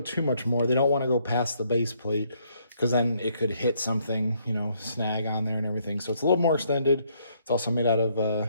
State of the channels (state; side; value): inverted; both; correlation -0.70